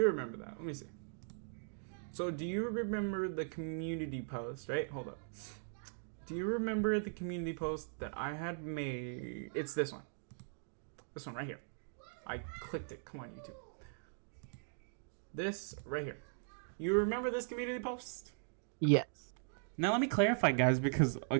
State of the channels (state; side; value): silent; left; digital silence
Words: remember that. Let me see. So, do you remember the community post, right? Hold up. Do you remember the community post that I had made? It's this one. This one right here. I clicked it. Come on, YouTube. This right here. You remember this community post? Yes. Now let me clarify, guys, because